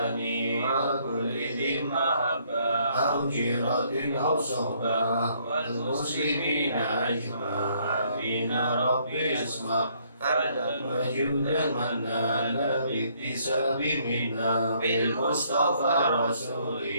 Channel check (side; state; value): both; inverted; correlation -0.67